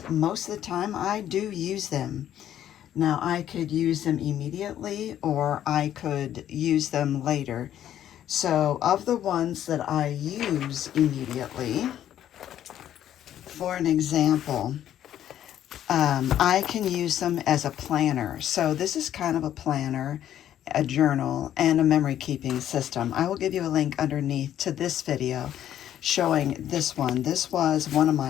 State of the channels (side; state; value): right; quieter; 11.2 dB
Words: most of the time, I do use them. Now, I could use them immediately or I could use them later. So, of the ones that I use immediately, for an example, I can use them as a planner. So this is kind of a planner, a journal, and a memory keeping system. I will give you a link underneath to this video showing this one. This was one of